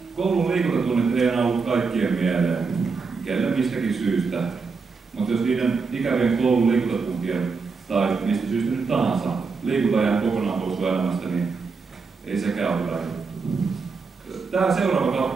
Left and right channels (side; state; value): left; quieter; 4.8 dB